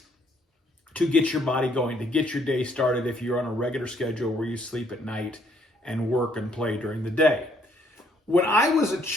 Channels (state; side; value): normal; both; correlation 0.67